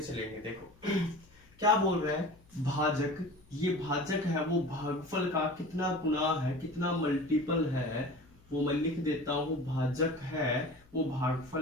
चलेंगे। देखो क्या बोल रहे हैं? भाजक, ये भाजक है वो भागफल का कितना गुना है, कितना मल्टीपल है, वो मैं लिख देता हूं। भाजक है वो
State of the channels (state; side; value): noise; left; hum, 28 dB below the sound